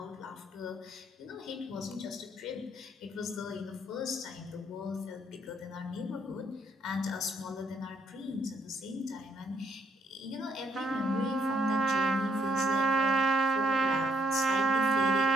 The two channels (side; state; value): both; normal; correlation 0.70